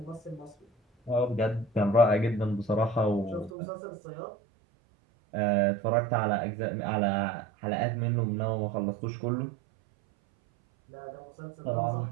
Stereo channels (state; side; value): drops out; left; at 3.5 s